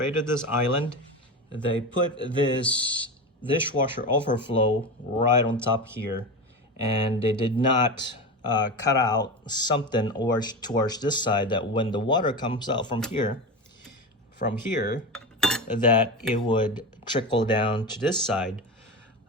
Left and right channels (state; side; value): normal; both; correlation 0.22